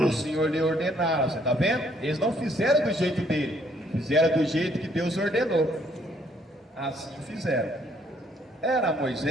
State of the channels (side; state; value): both; normal; correlation 0.66